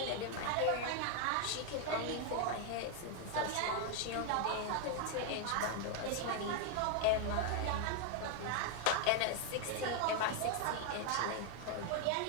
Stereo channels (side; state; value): both; different; correlation 0.00